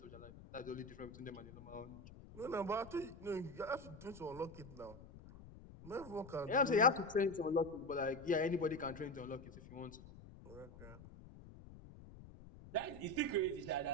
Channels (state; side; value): noise; left; rumble, 16 dB below the sound